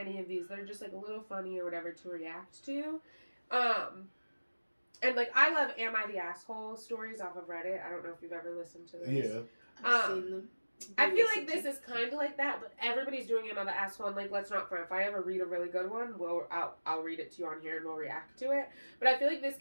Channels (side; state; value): both; inverted; correlation -1.00